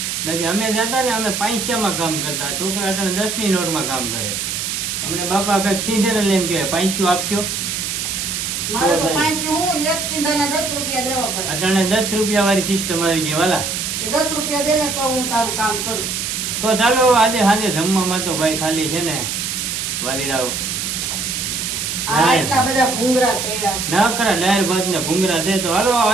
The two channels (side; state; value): right; noise; hiss, 2 dB below the sound